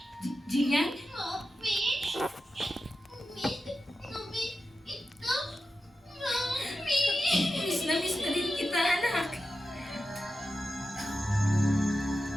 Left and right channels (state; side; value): normal; both; correlation 0.91